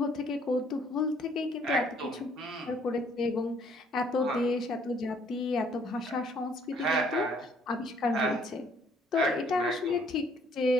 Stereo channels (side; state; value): both; normal; correlation 0.63